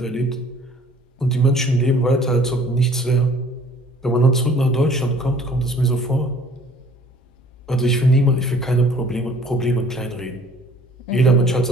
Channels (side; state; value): both; normal; correlation 0.53